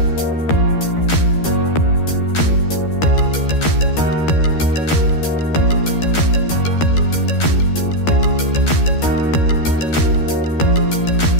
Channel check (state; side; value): late; right; 13 ms